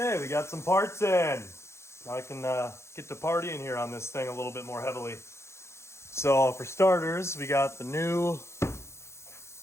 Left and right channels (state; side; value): late; right; 0.13 ms